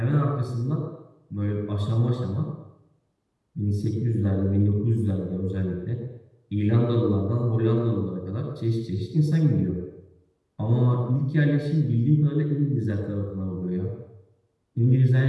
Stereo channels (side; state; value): both; identical; correlation 1.00